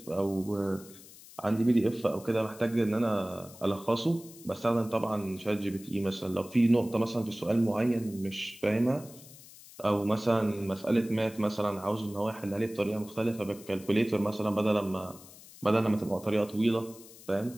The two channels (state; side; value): noise; left; hiss, 20 dB below the sound